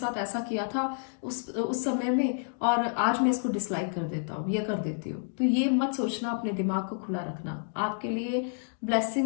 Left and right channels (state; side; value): silent; right; digital silence